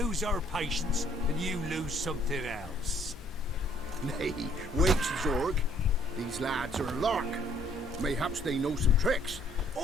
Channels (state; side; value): normal; both; correlation 0.63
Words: our patience and you lose something else. Nay, wait, Zorg. These lads are a lark. Mayhaps they know some tricks.